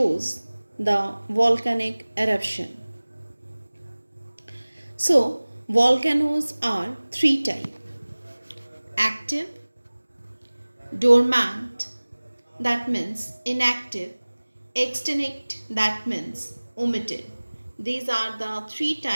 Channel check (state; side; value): inverted; both; correlation -1.00